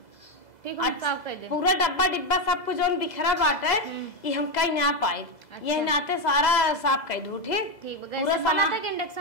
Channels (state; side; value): late; right; 2.0 ms